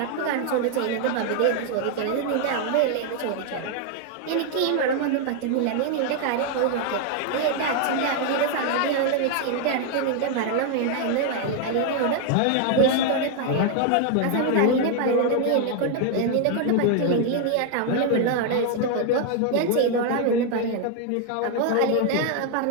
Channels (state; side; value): different; both; correlation 0.00